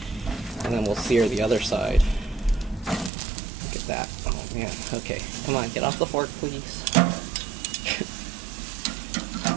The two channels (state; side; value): drops out; left; at 3.1 s